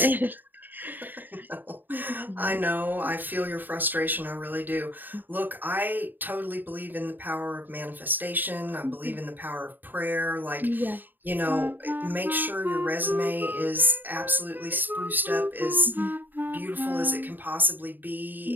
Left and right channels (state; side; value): late; left; 0.090 ms